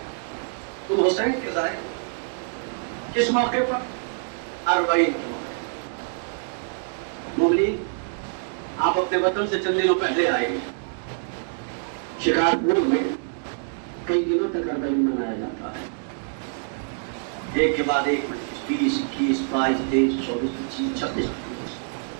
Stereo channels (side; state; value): left; silent; digital silence